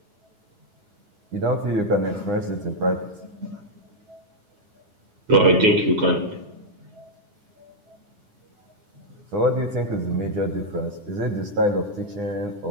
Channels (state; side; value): late; left; 9.8 ms